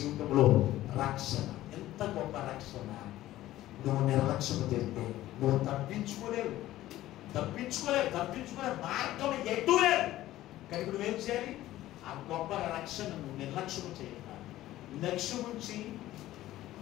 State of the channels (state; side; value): quieter; right; 15.0 dB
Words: రక్షణ, ఎంత గొప్ప రక్షణ! నువ్వు నిర్లక్ష్యం తెలిస్తే నువ్వు తప్పించుకోలేవు మార్గం ఎటు లేదు. కనుక నువ్వేం చేయాలి? ఆ గొప్ప రక్షణ నువ్వు నిర్లక్ష్యం చేయాలి. లక్ష్యం ఉంచి